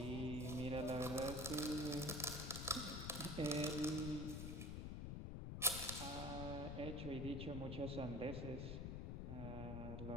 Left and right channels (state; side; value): noise; left; rumble, 3 dB below the sound